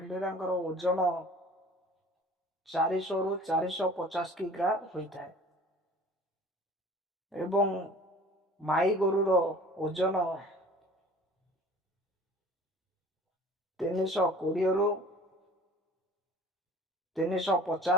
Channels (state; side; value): normal; both; correlation 0.46